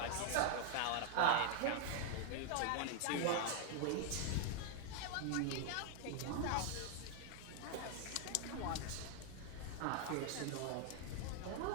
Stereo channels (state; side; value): different; both; correlation 0.00